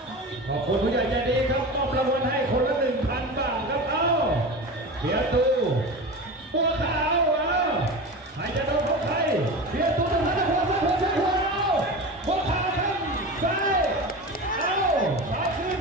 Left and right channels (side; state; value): both; normal; correlation 0.28